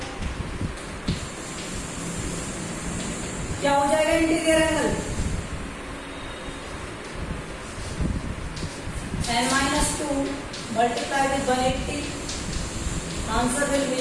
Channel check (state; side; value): identical; both; correlation 1.00